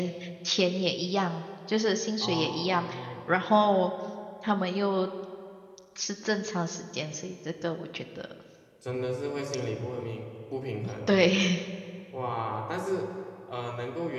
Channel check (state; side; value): identical; both; correlation 1.00